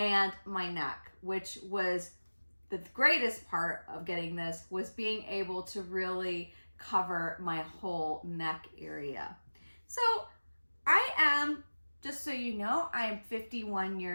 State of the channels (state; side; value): inverted; both; correlation -1.00